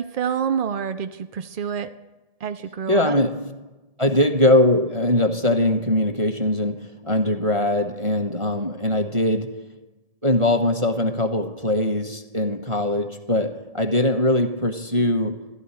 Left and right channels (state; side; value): late; left; 1.4 ms